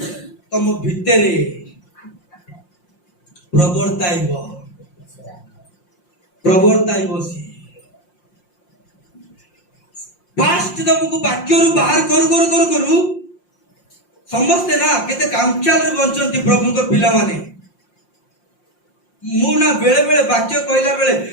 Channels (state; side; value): late; right; 5.7 ms